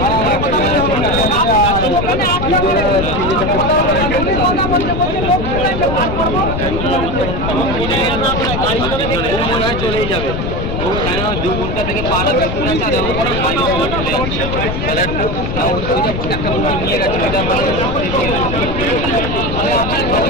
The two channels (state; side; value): noise; left; rumble, 3 dB below the sound